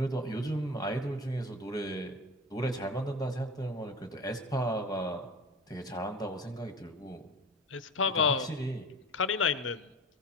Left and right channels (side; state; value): both; normal; correlation 0.34